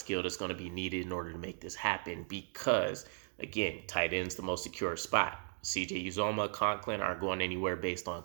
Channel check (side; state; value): left; silent; 53 dB below the other